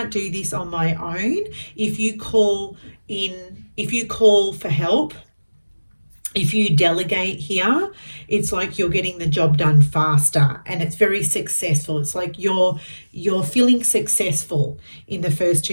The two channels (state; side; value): inverted; both; correlation -1.00